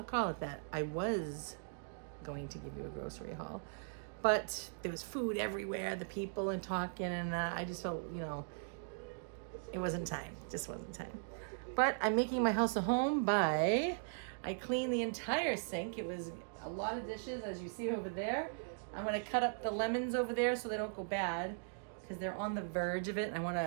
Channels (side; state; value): left; silent; digital silence